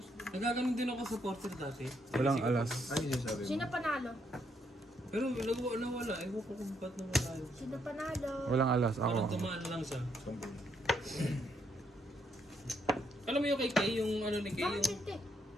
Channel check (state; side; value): normal; both; correlation 0.75